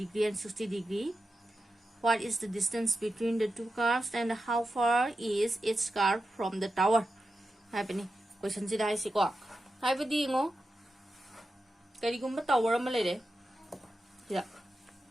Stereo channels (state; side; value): normal; both; correlation 0.90